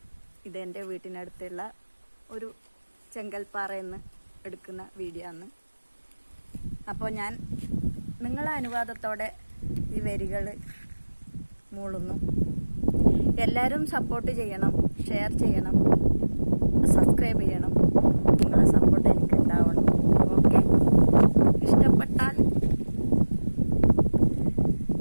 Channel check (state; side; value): inverted; both; correlation -1.00